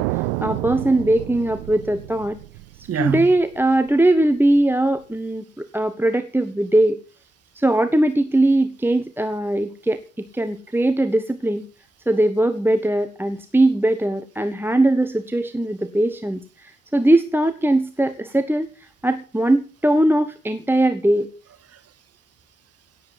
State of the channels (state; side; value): normal; both; correlation 0.91